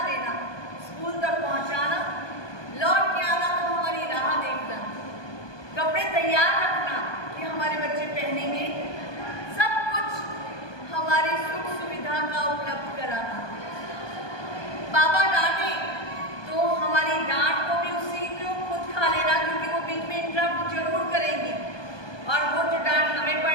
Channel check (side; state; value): right; late; 1.2 ms